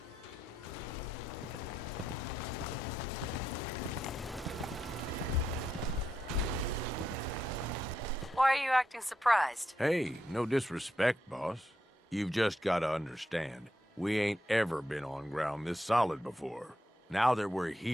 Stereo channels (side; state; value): both; normal; correlation 0.82